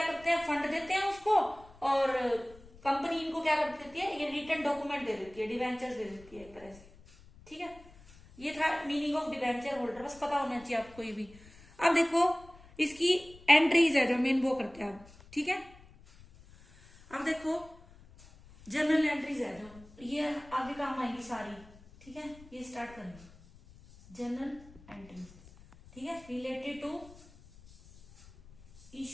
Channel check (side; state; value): left; noise; rumble, 23 dB below the sound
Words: करते हैं, फंड देते हैं उसको, और कंपनी इनको क्या कर देती है, ये रिटर्न डॉक्यूमेंट दे देती है, डिवेंचर्स दे देती है एक तरह से। ठीक है, ये था मीनिंग ऑफ डिवेंचर होल्डर, बस पता होना चाहिए आपको ये भी। अब देखो इसकी एंट्रीज है जो मेन वो करते हैं आप। ठीक है, अब देखो जनरल एंट्रीज है जो, ये आगे काम आएगी सारी। ठीक है, ये स्टार्ट करेंगे, जनरल एंट्री, ठीक है, related to